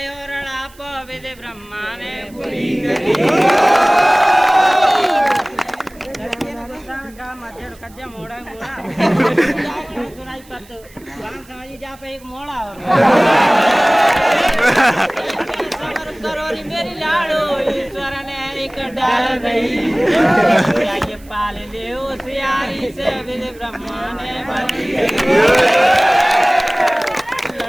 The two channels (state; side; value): noise; right; hiss, 26 dB below the sound